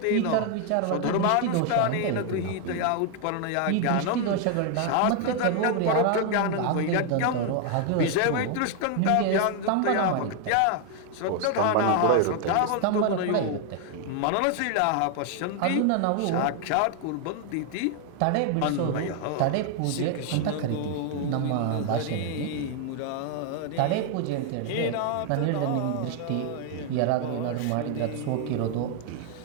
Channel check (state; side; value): different; both; correlation 0.00